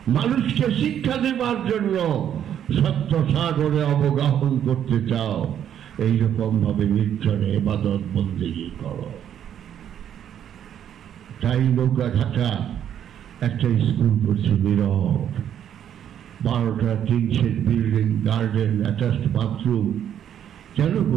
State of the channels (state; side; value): quieter; left; 9.7 dB